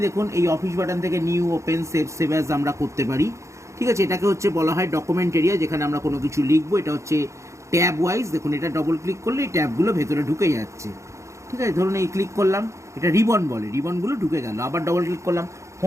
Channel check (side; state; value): left; late; 0.14 ms